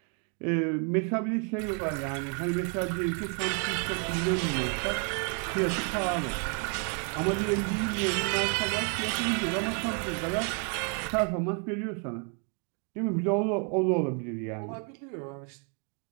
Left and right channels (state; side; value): quieter; left; 38.7 dB